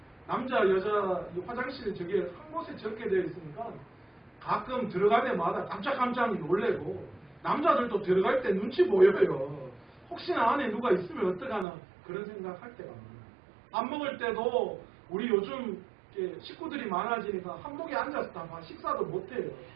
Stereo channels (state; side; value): drops out; left; at 11.7 s